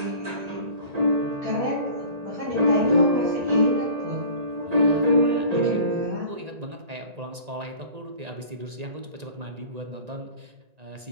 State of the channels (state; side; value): late; left; 1.9 ms